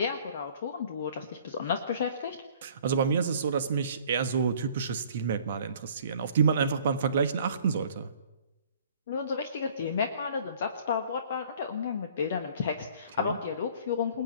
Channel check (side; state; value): both; inverted; correlation -0.53